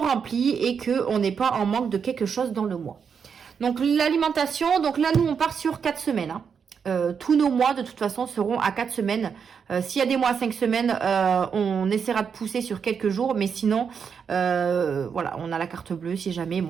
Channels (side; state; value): left; quieter; 6.6 dB